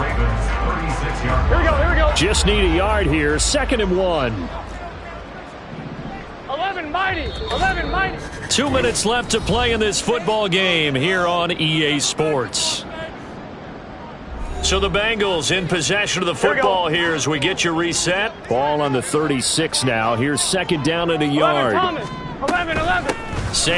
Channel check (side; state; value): both; identical; correlation 1.00